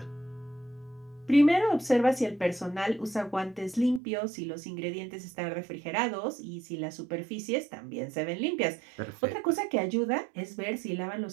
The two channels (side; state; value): left; drops out; at 4.0 s